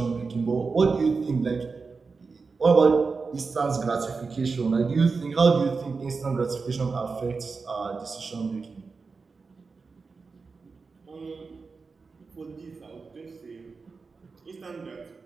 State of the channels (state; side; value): quieter; left; 4.6 dB